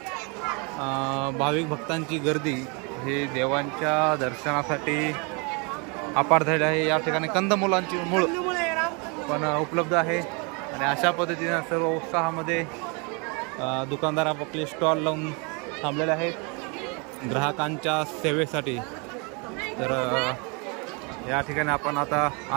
भाविक भक्तांची गर्दी हे देवांच्या दर्शनासाठी अपार झाली आहे। या ठिकाणी कंदमुलांची मूळ पण उपलब्ध आहे आणि अशा पद्धतीने सर्व उत्साहामध्ये दुकानदार आपले स्टॉल लावून थांबलेले आहेत ग्राहकांच्या सेवेसाठी। तर या ठिकाणी आपण आता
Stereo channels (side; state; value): left; quieter; 32.4 dB